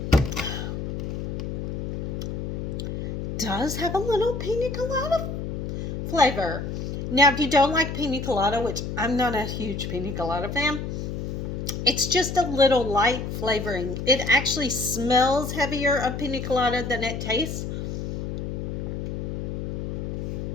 Does have a little pina colada flavor. Now, if you don't like pina colada, which I'm not a huge pina colada fan, it's just a little light flavoring. It actually smells heavier of pina colada than it tastes.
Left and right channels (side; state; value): left; noise; hum, 4 dB below the sound